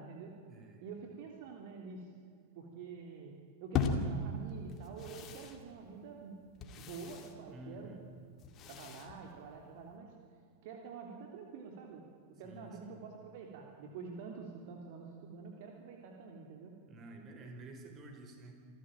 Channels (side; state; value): both; normal; correlation 0.08